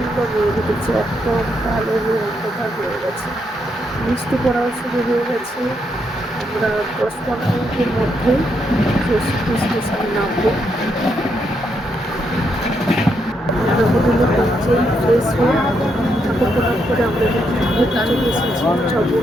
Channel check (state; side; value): normal; both; correlation 0.78